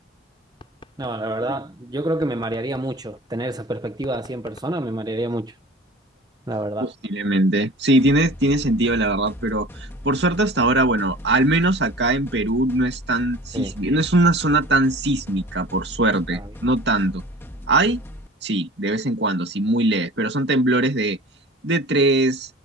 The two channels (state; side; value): normal; both; correlation 0.42